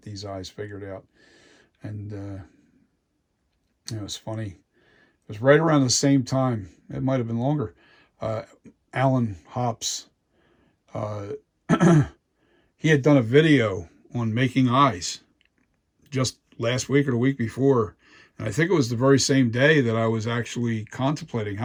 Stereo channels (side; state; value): both; identical; correlation 1.00